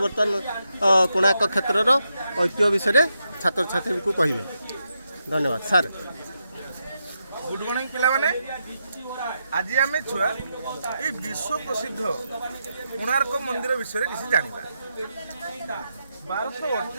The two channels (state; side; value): inverted; both; correlation -0.84